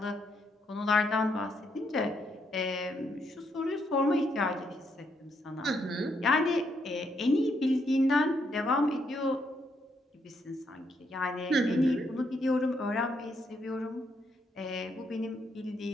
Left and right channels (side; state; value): both; normal; correlation 0.76